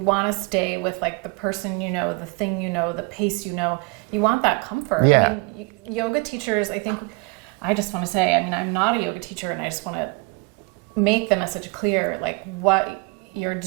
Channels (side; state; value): left; quieter; 27.8 dB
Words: want to stay with like the person you know, the thing you know, the pace you know. You want that comfort. Yeah. I mean, yoga teachers, I think, I just want to say, I mean, I'm not a yoga teacher, and I just want to make the message clear, like what you're